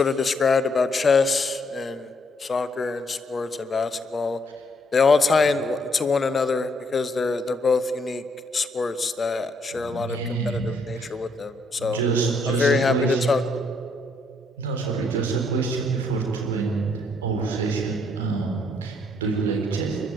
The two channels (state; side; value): normal; both; correlation 0.71